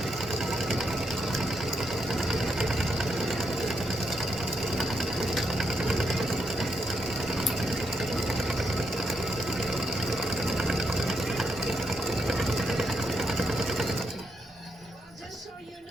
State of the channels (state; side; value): normal; both; correlation 0.79